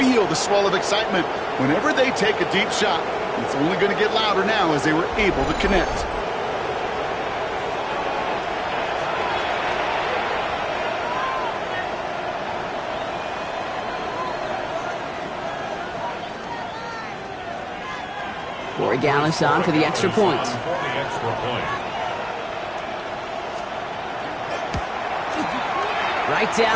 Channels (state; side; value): identical; both; correlation 1.00